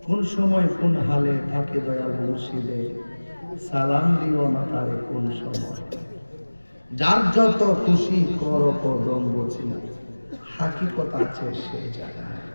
কোন সময় কোন হালে থাকে দয়াল মুর্শিদে, সালাম দিও না তারে কোন সময়। যার যত খুশি করো কদম বসি, হাকিকত আছে সেই জায়গায়।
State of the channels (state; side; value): inverted; both; correlation -1.00